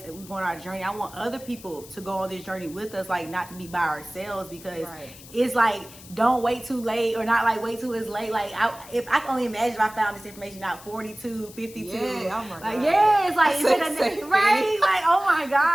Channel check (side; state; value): left; noise; hiss, 19 dB below the sound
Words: go on our journey, I want other people to go on this journey with us, like not to be by ourselves, because it's like, don't wait too late, or not like wait till it's late. Like if I can only imagine if I found this information out 42, 52. Oh my God. It's like, right? Like, oh my